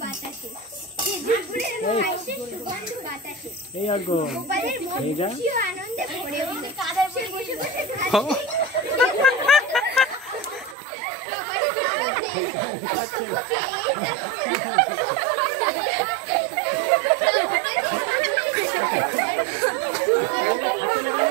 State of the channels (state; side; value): drops out; left; at 10.8 s